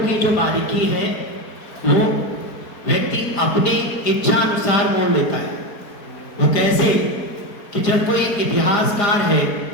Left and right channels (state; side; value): late; right; 4.5 ms